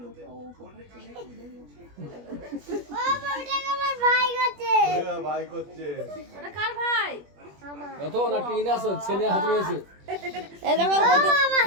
ভাই করছে। ওটা কার ভাই? কত না টিন আসো ছেলে হাত রয়েছে। এই দেখো না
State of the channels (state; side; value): late; left; 21 ms